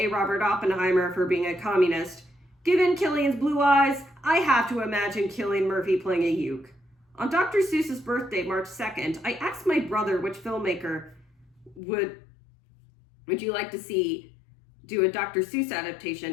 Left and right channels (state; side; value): drops out; right; at 11.8 s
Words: Robert Oppenheimer for being a communist, given Cillian's blue eyes, I have to imagine Cillian Murphy playing a Uke. On Dr. Seuss's birthday, March 2nd, I asked my brother which filmmaker would you like to see do a Dr. Seuss